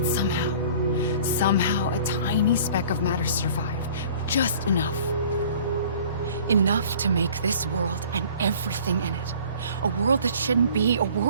somehow a tiny speck of matter survived. Just enough. Enough to make this world and everything in it. A world that shouldn't be, a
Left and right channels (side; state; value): both; inverted; correlation -0.49